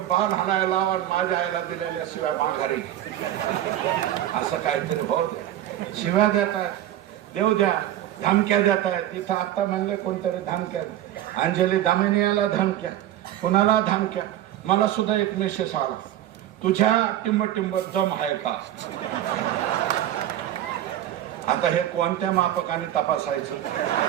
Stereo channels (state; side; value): quieter; left; 12.7 dB